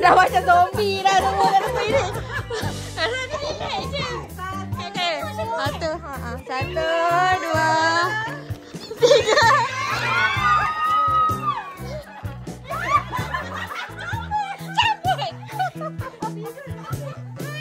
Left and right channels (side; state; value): both; identical; correlation 1.00